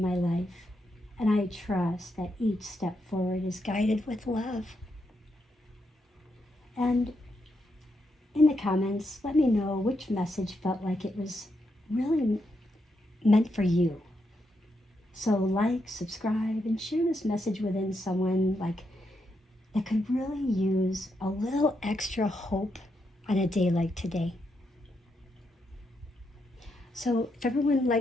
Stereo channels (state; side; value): normal; both; correlation 0.81